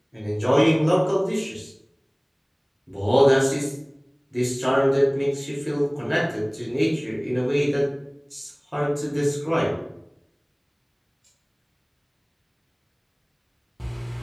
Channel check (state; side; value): identical; both; correlation 1.00